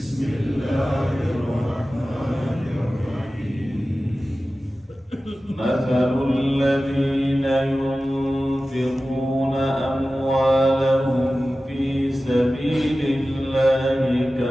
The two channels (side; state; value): both; normal; correlation 0.95